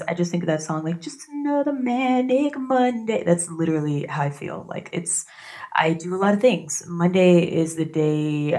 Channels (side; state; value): both; identical; correlation 1.00